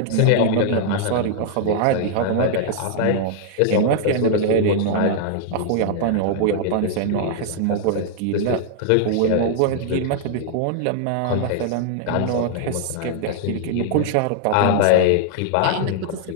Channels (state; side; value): different; both; correlation -0.01